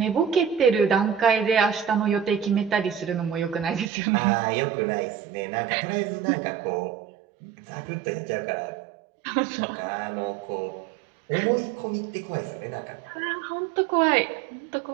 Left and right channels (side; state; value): left; drops out; at 3.9 s